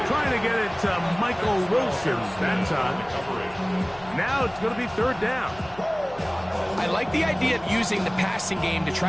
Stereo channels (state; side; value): noise; left; hum, 22 dB below the sound